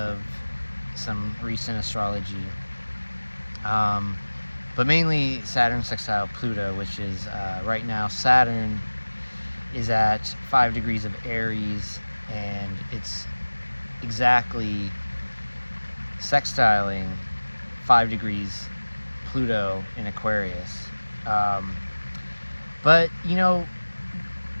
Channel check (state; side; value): inverted; both; correlation -1.00